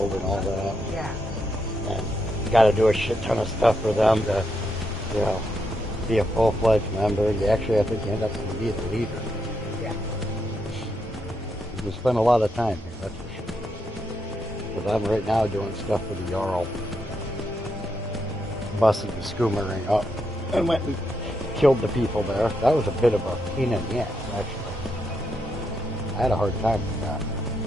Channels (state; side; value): normal; both; correlation 0.81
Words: and all that. Yeah. And you got to do a shit ton of stuff for them to, you know, be a full-fledged member. You actually, I think, you end up being the leader. Yeah. You spend a lot of time here, that's for sure. Because I'm right now doing stuff for the Jarl. Busted the Skoomerang up and went and killed the people there. That was a bit of a pain in the ass, actually. I had a hard time with that.